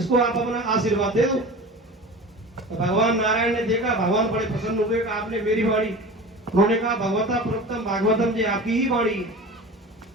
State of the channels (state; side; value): normal; both; correlation 0.35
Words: आप अपना आशीर्वाद दे दो। तो भगवान नारायण ने देखा, भगवान बड़े प्रसन्न हुए कि आपने मेरी वाणी, उन्होंने कहा भगवता प्रोक्तम भागवतम जी आपकी ही वाणी।